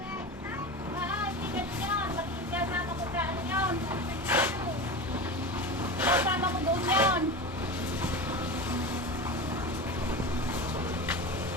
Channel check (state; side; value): normal; both; correlation 0.26